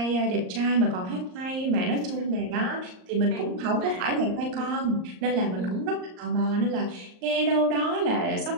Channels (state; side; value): late; left; 38 ms